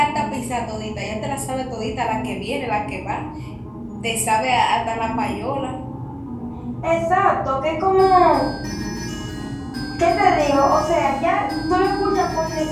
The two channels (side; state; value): both; identical; correlation 1.00